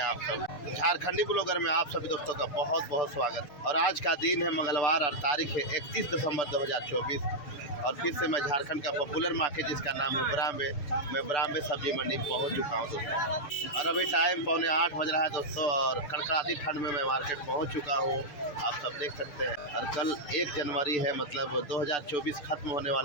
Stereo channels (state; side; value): late; right; 6.8 ms